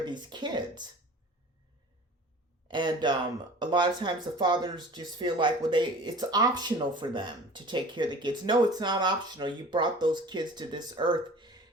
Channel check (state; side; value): normal; both; correlation 0.43